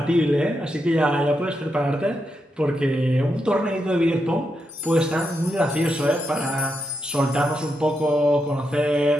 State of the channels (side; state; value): both; normal; correlation 0.84